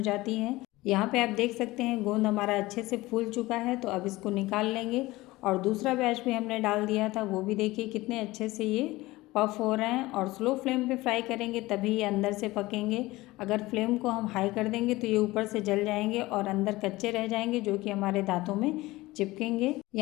जाती हैं। यहाँ पे आप देख सकते हैं गोंद हमारा अच्छे से फूल चुका है, तो अब इसको निकाल लेंगे। और दूसरा बैच भी हमने डाल दिया था, वो भी देखिए कितने अच्छे से ये पफ हो रहे हैं। और स्लो फ्लेम पे फ्राई करेंगे तभी ये अंदर से पकेंगे। अगर फ्लेम को हम हाई कर देंगे तो ये ऊपर से जल जाएंगे और अंदर कच्चे रह जाएंगे, जो कि हमारे दांतों में चिपकेंगे।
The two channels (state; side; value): quieter; right; 19.4 dB